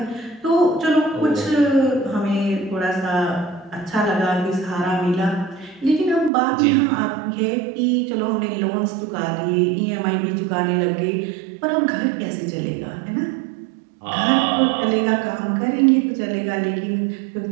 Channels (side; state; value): left; drops out; at 6.3 s